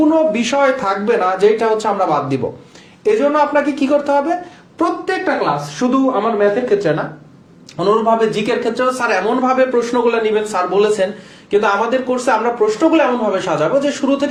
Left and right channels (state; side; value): identical; both; correlation 1.00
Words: বিষয় থাকবে না যেটা হচ্ছে আমরা বাদ দিব। এজন্য আপনাকে কি করতে হবে, প্রত্যেকটা ক্লাস, শুধু আমার ম্যাথের ক্ষেত্রে না, অনুরূপভাবে জিকের ক্ষেত্রেও স্যার এমন ভাবে প্রশ্নগুলো নেবেন, স্যার বলেছেন, কিন্তু আমাদের কোর্সে আমরা প্রশ্নগুলো এমন ভাবে সাজাবো যে শুরু